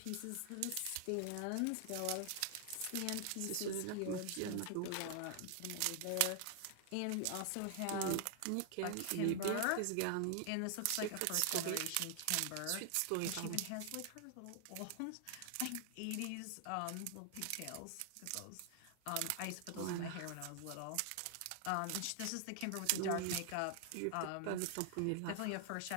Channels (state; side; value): different; both; correlation 0.00